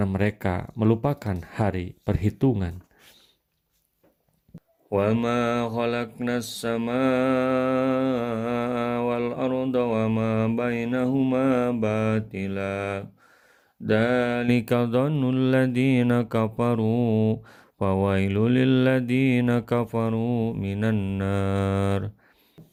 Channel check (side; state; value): both; identical; correlation 1.00